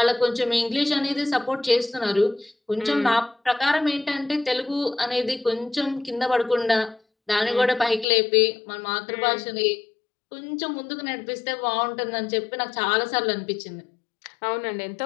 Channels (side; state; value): right; drops out; at 8.1 s